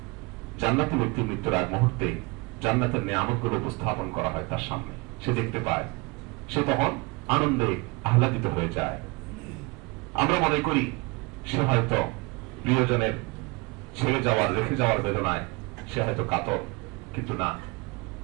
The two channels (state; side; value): quieter; left; 26.5 dB